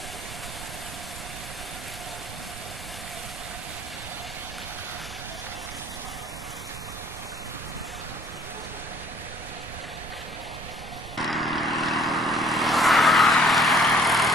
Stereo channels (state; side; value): noise; right; rumble, 12 dB below the sound